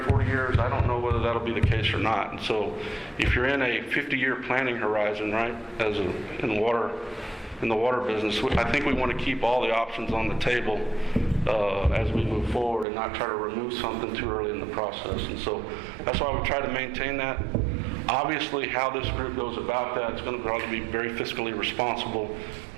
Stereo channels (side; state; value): left; drops out; at 12.9 s